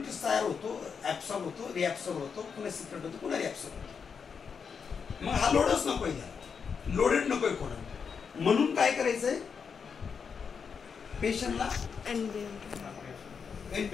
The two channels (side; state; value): right; quieter; 6.2 dB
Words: तयार होतो, ॲब्सॉर्ब होतो, रिॲब्सॉर्ब होतो, पुन्हा सिक्रेट होतो, पुन्हा रिॲब्सॉर्ब होतो. मग हा लोडच नकोय, त्याला लोडेड नकोय कोणा. म्हणून काय करायचंय, पेशंटला NBM